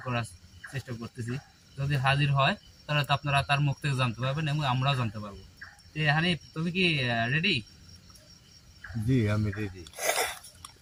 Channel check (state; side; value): identical; both; correlation 1.00